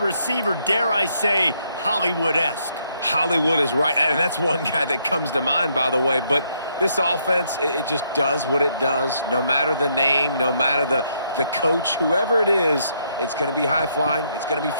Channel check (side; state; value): both; inverted; correlation -0.73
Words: dare I say, Hollywood-esque. Hollywood is right, and that's one guy that comes to mind, by the way. But this offense, it just does what it does. No matter the name, no matter the coach, whoever it is, it's going to be high-flying, it's going to be